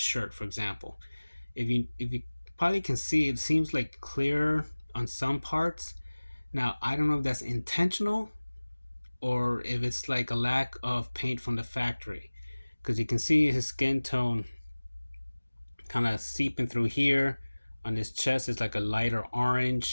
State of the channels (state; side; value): inverted; both; correlation -1.00